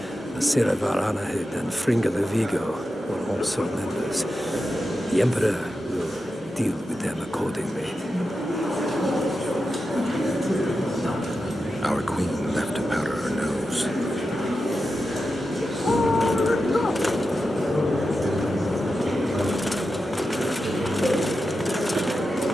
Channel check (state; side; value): normal; both; correlation 0.90